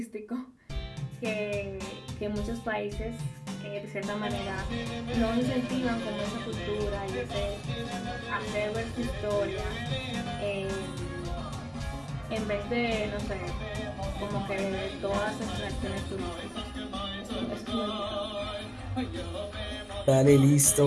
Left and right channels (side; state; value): both; identical; correlation 1.00